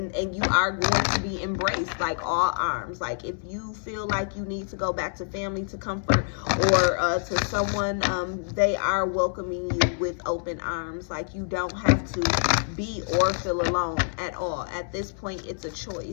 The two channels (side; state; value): right; silent; digital silence